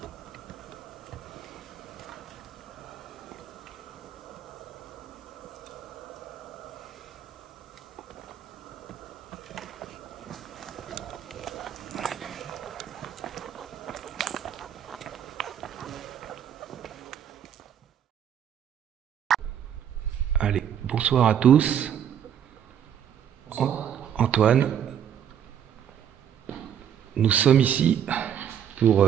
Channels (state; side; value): quieter; left; 9.1 dB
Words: Allez, bonsoir à tous. Antoine, nous sommes ici pour